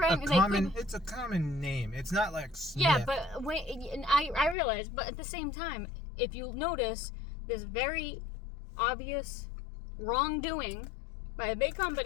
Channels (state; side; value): drops out; right; at 4.5 s